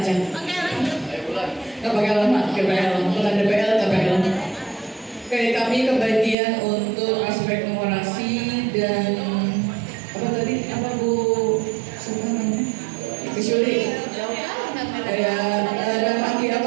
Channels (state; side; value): drops out; left; at 6.4 s